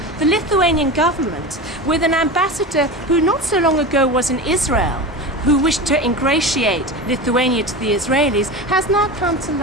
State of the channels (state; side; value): normal; both; correlation 0.26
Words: The Lithuanian government, with an ambassador who not so long ago was in Israel, who wished to ingratiate Lithuania to the Israelis, has now come to